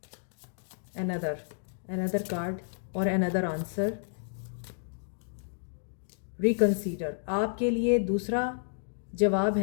अनदर कार्ड और अनदर आंसर, रिकंसीडर। आपके लिए दूसरा जवाब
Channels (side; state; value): right; silent; digital silence